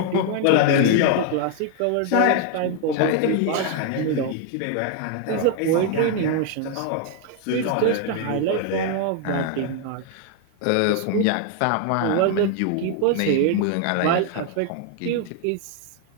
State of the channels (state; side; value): different; both; correlation 0.00